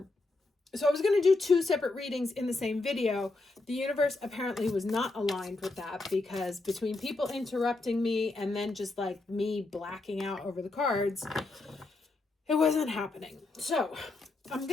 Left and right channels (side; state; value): right; quieter; 3.2 dB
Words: I was going to do 2 separate readings in the same video. The universe apparently was not aligned with that, because between people interrupting me and then just like me blacking out over the cards, it wasn't happening. So I'm